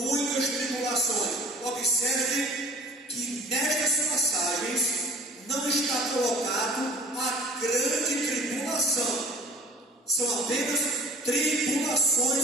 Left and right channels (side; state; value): both; normal; correlation 0.47